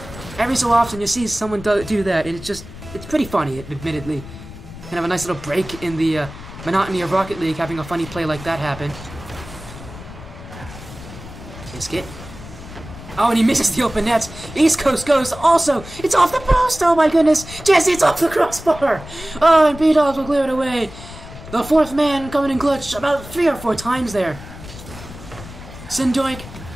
every so often you see someone do that, and it's pretty funny, admittedly. Kind of a nice little break in the monotony of Rocket League, having a funny play like that happen. Biscuit. Oh, and he misses the open nets. East Coast Ghost also. It's off the post. Oh my goodness. Jesse, it's off the crossbar. Oh, and B-Dobs will clear it away. The fourth man coming in clutch about 3 or 4 times there. Synn Doink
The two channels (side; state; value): left; noise; rumble, 15 dB below the sound